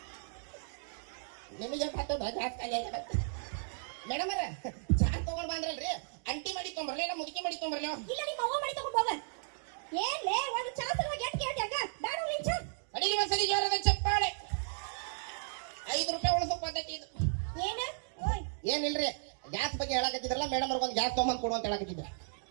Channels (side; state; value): left; silent; digital silence